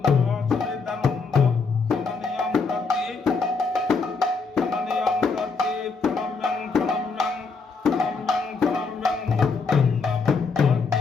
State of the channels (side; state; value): right; quieter; 4.6 dB